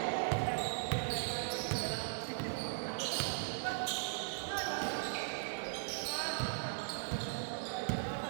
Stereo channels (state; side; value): silent; left; digital silence